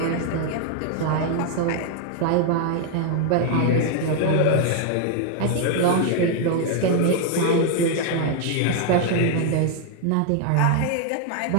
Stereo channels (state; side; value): different; both; correlation 0.01